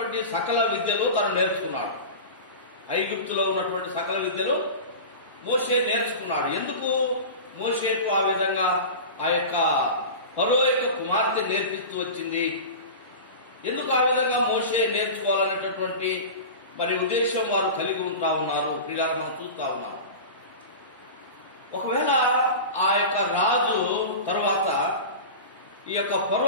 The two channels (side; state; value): both; inverted; correlation -0.30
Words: సకల విద్యలు తను నేర్చుకున్నాడు. ఐగుప్తులో ఉన్నటువంటి సకల విద్యలు మోషే నేర్చుకున్నాడు. ఎందుకు మోషేకు ఆ విధంగా ఆ యొక్క ఫరో యొక్క కుమార్తె నేర్పిస్తూ వచ్చింది? ఎందుకు ఆ విధంగా మోషే నేర్చుకోవాలనేటటువంటి మరి ఉద్దేశం వారు కలిగి ఉంటా ఉన్నారు. పిల్లలు మనం చూస్తా ఉన్నాం. ఒకవేళ ఆ యొక్క రాజు తర్వాత ఈ యొక్క